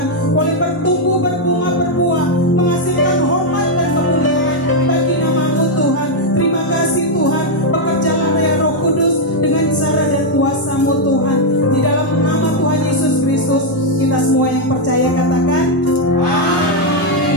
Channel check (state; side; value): normal; both; correlation 0.00